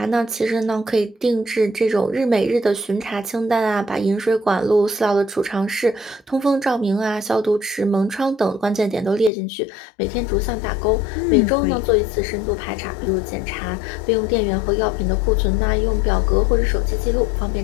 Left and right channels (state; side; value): drops out; right; at 9.3 s